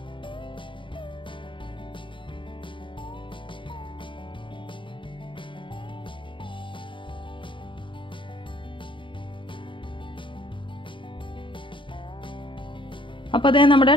അപ്പോൾ അതേ നമ്മുടെ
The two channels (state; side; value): late; right; 0.24 ms